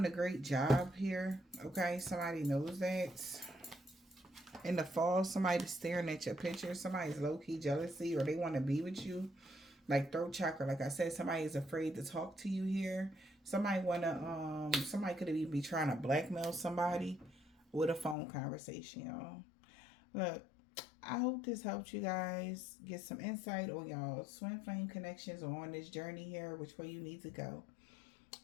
a great job here. Okay, somebody knows that. In the fall, somebody's staring at your picture. Somebody's low-key jealousy, or they want to be with you. Like throat chakra, like I said, somebody is afraid to talk to you here. Somebody somebody could even be trying to blackmail somebody with a phone conversation, y'all. Look, I hope this helped you guys get some insight on y'all twin flame connections or on this journey here, which way you need to go.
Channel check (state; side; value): drops out; right; at 18.2 s